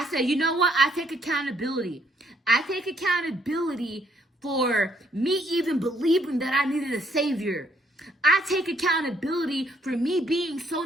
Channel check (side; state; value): both; normal; correlation 0.68